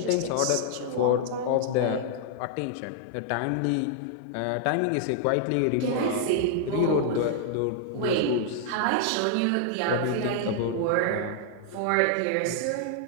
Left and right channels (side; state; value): both; different; correlation 0.00